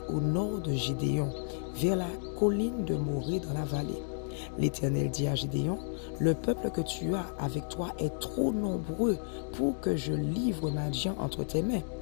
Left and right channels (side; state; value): right; silent; digital silence